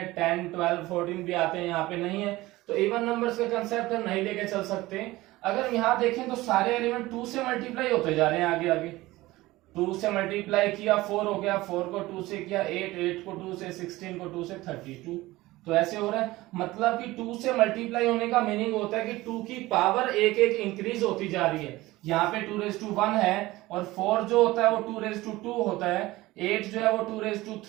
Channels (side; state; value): left; quieter; 18.7 dB